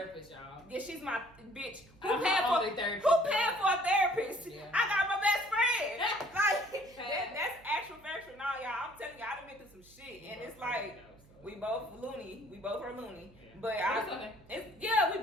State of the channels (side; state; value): right; noise; hum, 26 dB below the sound